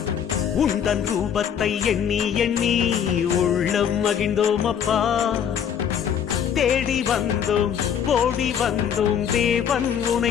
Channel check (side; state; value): right; quieter; 8.4 dB